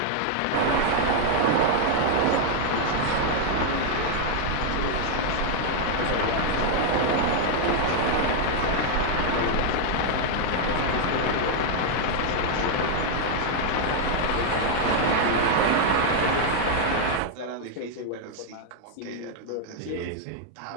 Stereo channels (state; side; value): different; both; correlation 0.00